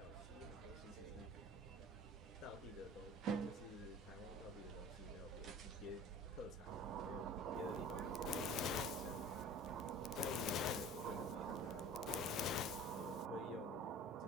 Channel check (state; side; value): normal; both; correlation 0.42